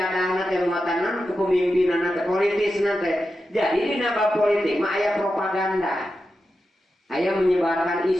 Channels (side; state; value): both; normal; correlation 0.90